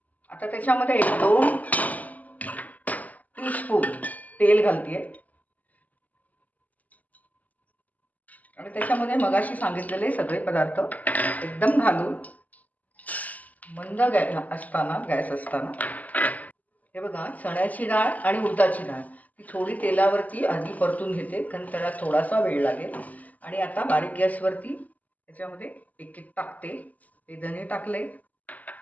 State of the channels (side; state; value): right; late; 0.078 ms